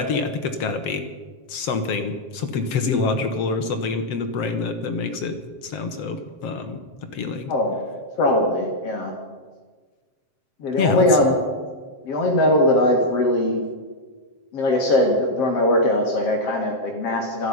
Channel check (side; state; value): right; late; 7.6 ms